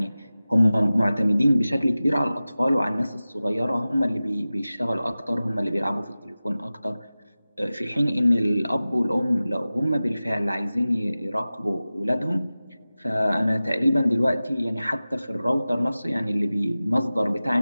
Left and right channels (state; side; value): inverted; both; correlation -0.96